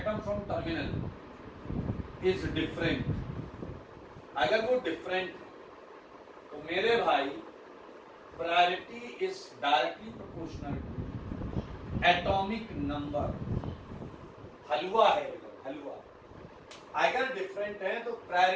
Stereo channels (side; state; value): both; identical; correlation 1.00